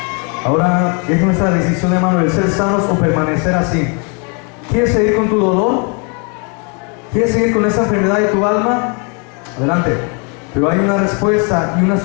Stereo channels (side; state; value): right; quieter; 35.2 dB